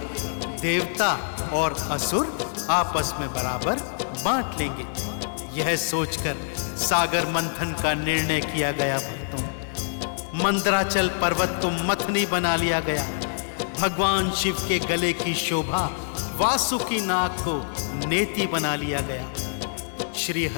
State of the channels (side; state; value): right; silent; digital silence